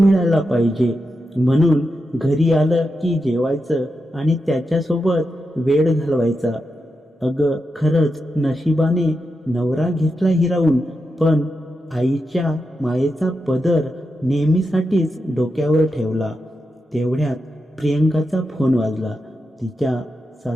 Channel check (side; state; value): both; normal; correlation 0.87